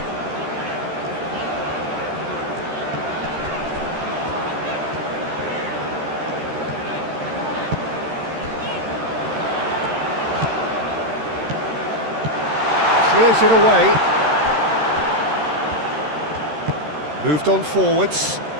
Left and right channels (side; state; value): left; late; 13 ms